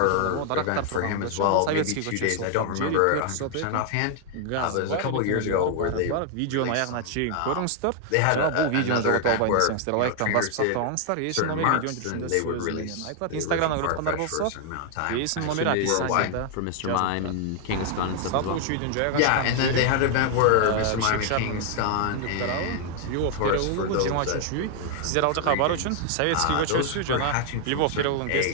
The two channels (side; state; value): both; different; correlation 0.00